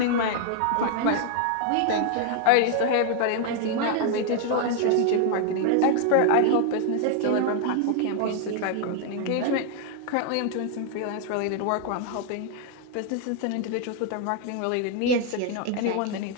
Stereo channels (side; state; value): both; different; correlation 0.00